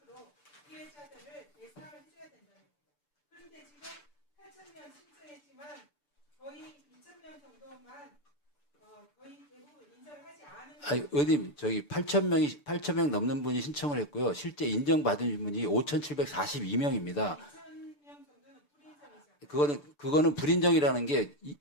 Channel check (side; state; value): right; late; 6.8 ms